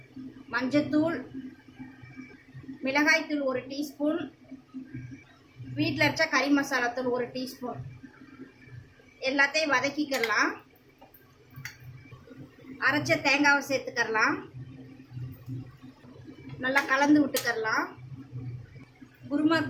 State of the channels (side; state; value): both; identical; correlation 1.00